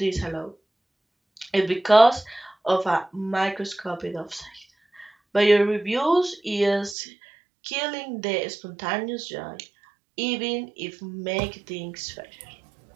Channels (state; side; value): drops out; left; at 7.0 s